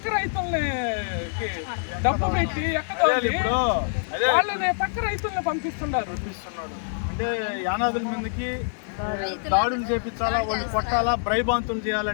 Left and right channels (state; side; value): silent; right; digital silence